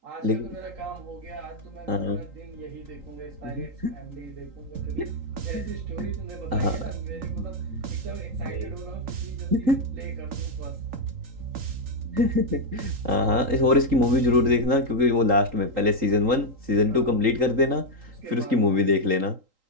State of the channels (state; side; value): late; left; 3.8 ms